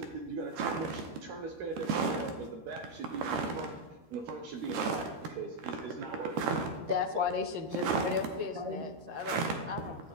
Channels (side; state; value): left; late; 13 ms